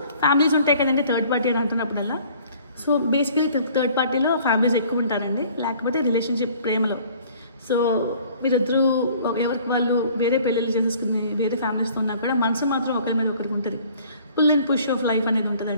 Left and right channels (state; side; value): inverted; both; correlation -0.54